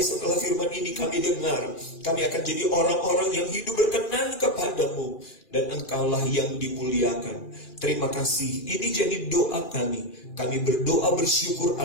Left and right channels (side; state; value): right; late; 2.4 ms